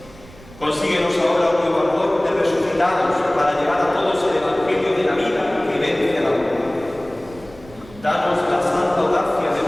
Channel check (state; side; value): noise; right; rumble, 22 dB below the sound